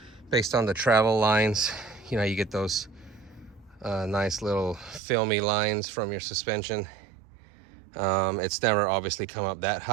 Based on the travel lines, you know, you get those nice little filmy lines from your suspension. It's never obviously come up that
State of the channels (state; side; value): drops out; left; at 5.0 s